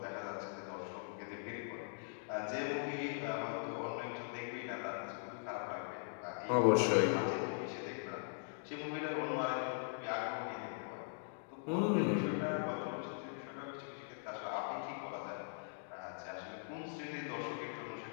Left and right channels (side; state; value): right; silent; digital silence